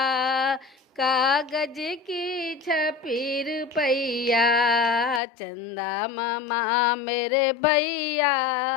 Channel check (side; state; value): right; drops out; at 5.2 s